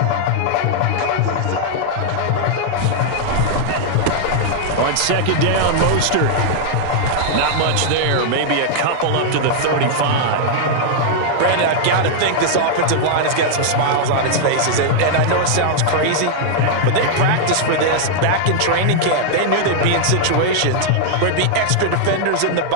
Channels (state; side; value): different; both; correlation -0.01